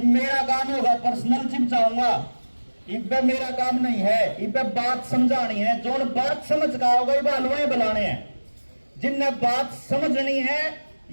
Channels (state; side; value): inverted; both; correlation -1.00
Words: मेरा काम होगा पर्सनल जिम जाऊंगा, इब्बे मेरा काम नहीं है। इब्बे बात समझानी है, जो बात समझ का होगा ये बालुए बुलाने हैं। जिनने बात समझनी है